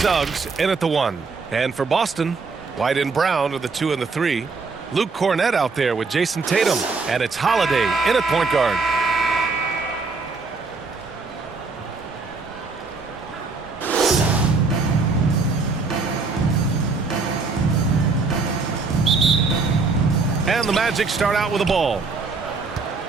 in at the 1. And for Boston, White and Brown are the 2 and the 3. Luke Cornett out there with Jason Tatum. And it's Holiday in at point guard. And the Magic start out with the ball.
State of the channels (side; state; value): left; quieter; 4.3 dB